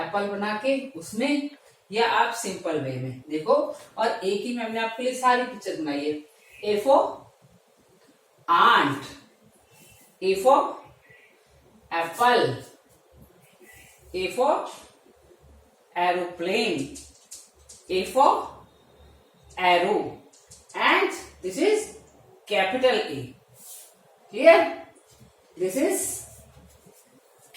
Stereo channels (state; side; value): identical; both; correlation 1.00